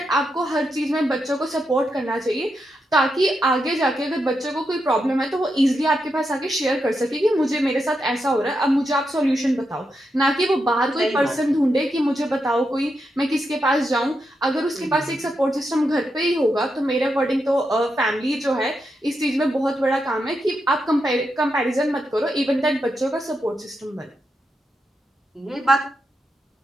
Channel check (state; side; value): normal; both; correlation 0.85